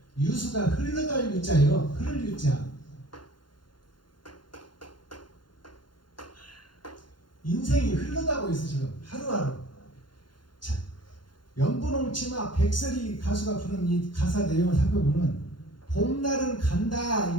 유수가 흘러갈 유자예요. 흐를 유자. 인생이 흘러가고 있어 지금 하루하루. 자, 연분홍치마 백설이 가수가 부른 이 가사 내용을 살펴보면 봄날은 간다 이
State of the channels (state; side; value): late; right; 0.71 ms